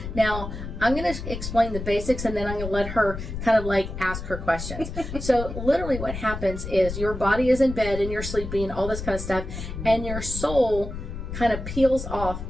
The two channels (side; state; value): left; noise; rumble, 7 dB below the sound